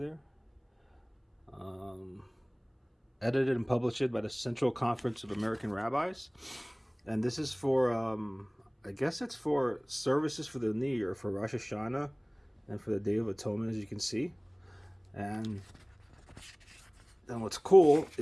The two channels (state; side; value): identical; both; correlation 1.00